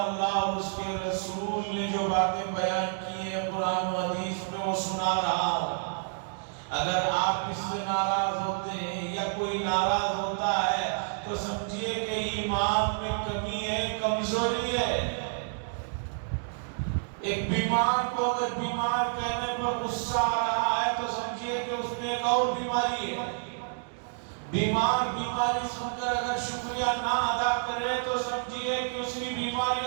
اللہ اور اس کے رسول نے جو باتیں بیان کی ہیں قرآن و حدیث میں وہ سنا رہا ہوں۔ اگر آپ اس سے ناراض ہوتے ہیں یا کوئی ناراض ہوتا ہے تو سمجھیے کہ ایمان میں کمی ہے، کمزوری ہے۔ ایک بیمار کو اگر بیمار کہنے پر غصہ آ رہا ہے تو سمجھیے کہ اس میں ایک اور بیماری ہے۔ بیمار بیماری سن کر اگر شکریہ نہ ادا کرے تو سمجھیے کہ اس کی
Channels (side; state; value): left; silent; digital silence